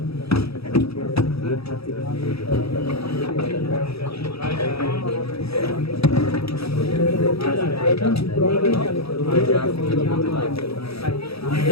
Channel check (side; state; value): right; late; 0.77 ms